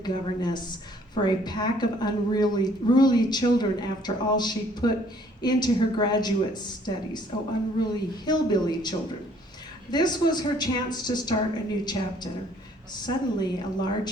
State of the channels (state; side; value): normal; both; correlation 0.61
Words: for a pack of unruly children after all she put into her graduate studies. Oh, unruly hillbilly children. This was her chance to start a new chapter. Suddenly, a